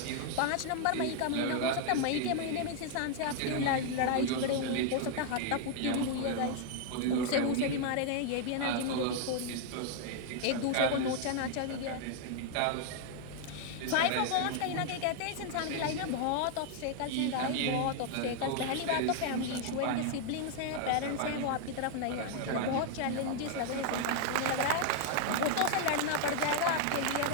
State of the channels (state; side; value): different; both; correlation 0.00